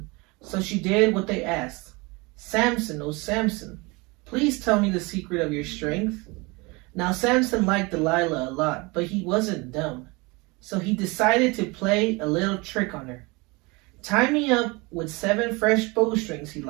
so she did what they asked. Samson, oh Samson, please tell me the secret of your strength. Now Samson liked Delilah a lot, but he wasn't dumb. So he decided to play a little trick on her. Tie me up with 7 fresh bowstrings, he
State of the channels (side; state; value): left; quieter; 26.1 dB